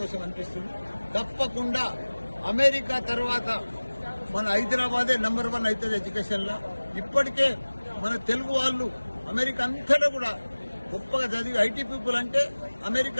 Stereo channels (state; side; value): inverted; both; correlation -1.00